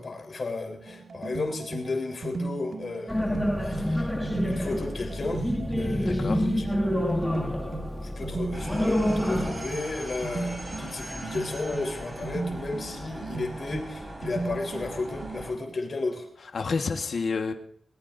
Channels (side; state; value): both; normal; correlation 0.94